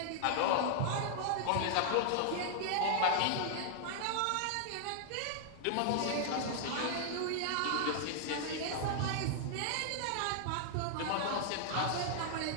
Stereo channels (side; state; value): both; different; correlation -0.01